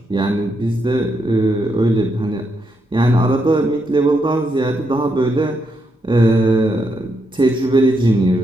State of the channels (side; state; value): both; normal; correlation 0.80